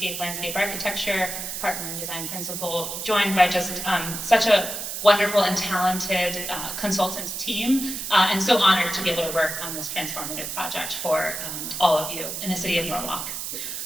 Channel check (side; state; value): right; noise; hiss, 5 dB below the sound